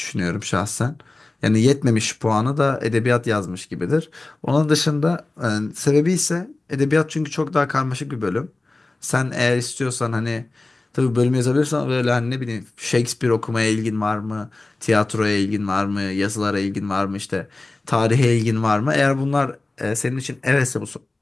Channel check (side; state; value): right; quieter; 3.0 dB